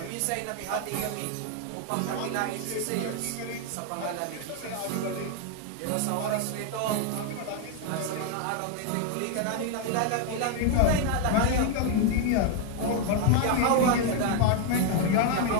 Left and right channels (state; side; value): different; both; correlation 0.01